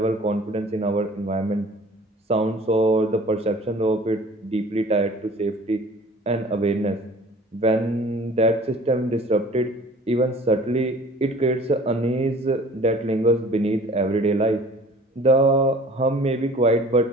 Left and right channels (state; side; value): normal; both; correlation 0.48